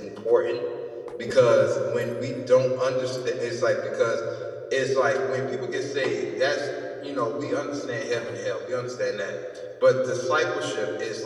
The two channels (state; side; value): identical; both; correlation 1.00